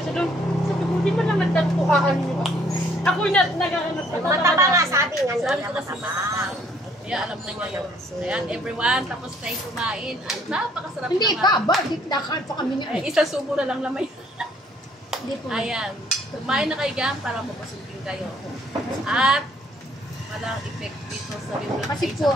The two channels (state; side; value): normal; both; correlation 0.63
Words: doon. Sabi ko, di ba lang nagtagpukaan niyo? Ako yung naghahanap sa Mataba nga sabi nga Sabi nila ko kasi matabang. kaya alam na niya yun. Ayan, everyone, tapos tayo kumain. At napakasarap Hindi naman. pa ba? Di nakain pa kami niya. Ay, isang subo na lang lamay. Hindi po. Ayan. Kumain na kayo dyan para mapasugin kayo. At walang effect dito sa bibig. Kasi po,